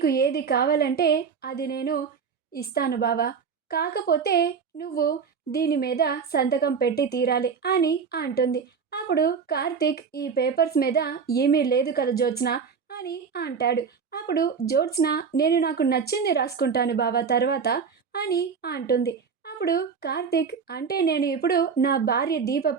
ఏది కావాలంటే అది నేను ఇస్తాను బావా, కాకపోతే నువ్వు దీని మీద సంతకం పెట్టి తీరాలి అని అంటుంది. అప్పుడు కార్తీక్, ఈ పేపర్స్ మీద ఏమీ లేదు కదా జ్యోత్స్న అని అంటాడు. అప్పుడు జ్యోత్స్న, నేను నాకు నచ్చింది రాసుకుంటాను బావా తర్వాత అని అంటుంది. అప్పుడు కార్తీక్, అంటే నేను ఇప్పుడు నా భార్య దీప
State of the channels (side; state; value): left; quieter; 6.0 dB